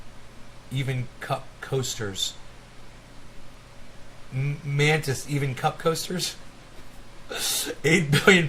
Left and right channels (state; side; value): identical; both; correlation 1.00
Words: Even cup coasters. Mantis, even cup coasters? 8 billion